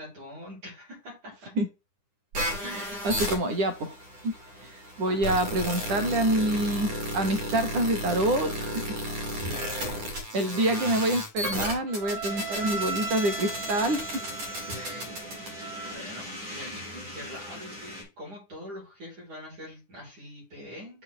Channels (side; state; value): left; late; 9.9 ms